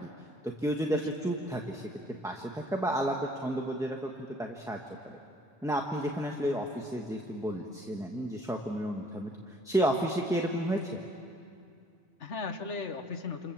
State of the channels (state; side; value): normal; both; correlation 0.59